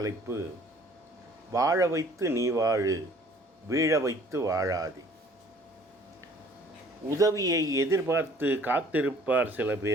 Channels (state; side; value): normal; both; correlation 0.54